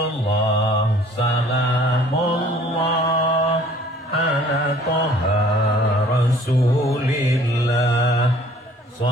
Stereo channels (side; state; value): both; normal; correlation 0.54